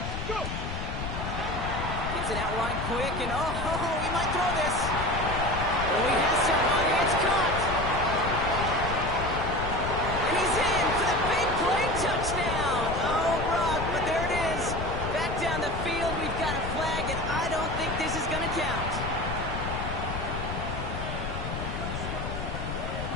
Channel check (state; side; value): noise; left; rumble, 5 dB below the sound